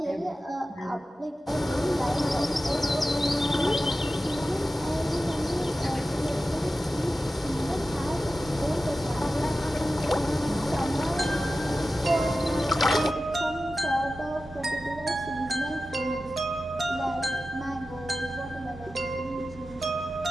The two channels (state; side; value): normal; both; correlation 0.94